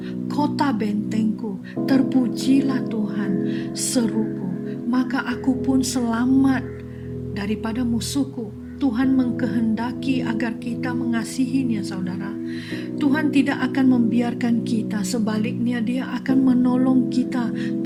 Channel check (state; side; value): identical; both; correlation 1.00